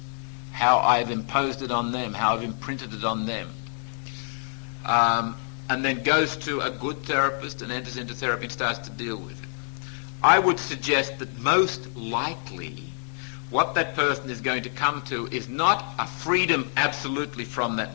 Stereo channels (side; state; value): right; silent; 60 dB below the other